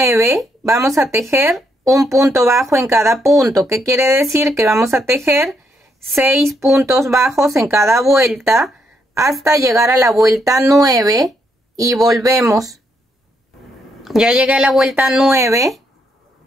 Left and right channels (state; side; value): normal; both; correlation 0.76